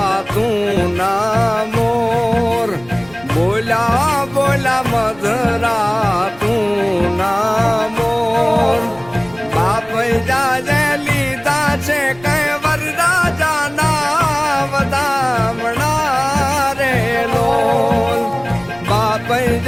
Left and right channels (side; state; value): right; noise; rumble, 24 dB below the sound